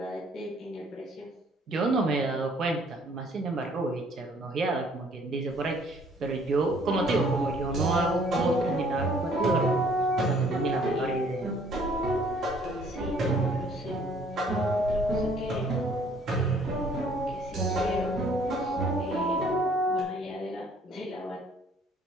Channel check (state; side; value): normal; both; correlation 0.59